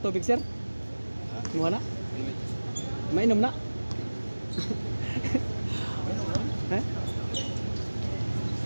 sir. Imuha na. Mainom na. Eh?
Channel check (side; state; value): both; inverted; correlation -1.00